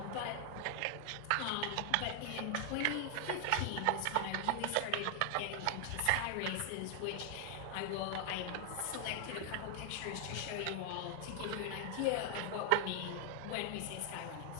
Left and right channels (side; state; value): both; different; correlation 0.00